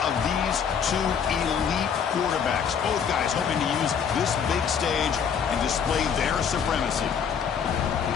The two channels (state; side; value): quieter; right; 7.2 dB